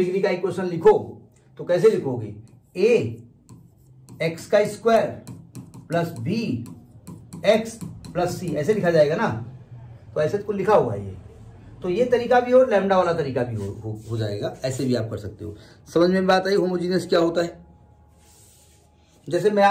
का इक्वेशन लिखो तो कैसे लिखोगे? a x का square plus b x plus c, ऐसे लिखा जाएगा ना। तो ऐसे तो लिखा हुआ है ये, तो ये तरीका भी हो, लैम्डा वाला तरीका भी हो जाएगा, ऐसे भी आप कर सकते हो। समझ में बात आई होमोजीनियस क्या होता है? जैसे मैं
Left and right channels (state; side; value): identical; both; correlation 1.00